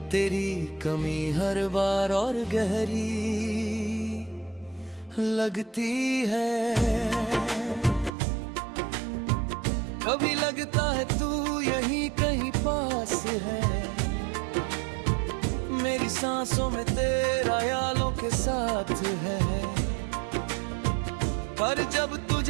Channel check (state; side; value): drops out; left; at 8.1 s